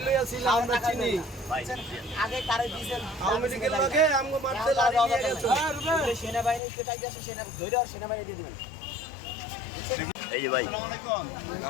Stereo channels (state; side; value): drops out; right; at 6.6 s